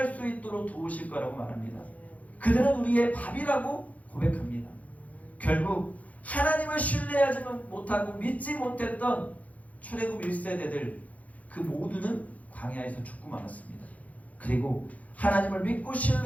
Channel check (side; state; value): right; late; 0.071 ms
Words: 수 있도록 도우실 거라고 말합니다. 그들은 우리의 밥이라고 고백합니다. 결국 하나님을 신뢰하지 못하고 믿지 못했던 출애굽 1세대들 그 모두는 광야에서 죽고 말았습니다. 그리고 하나님을 믿고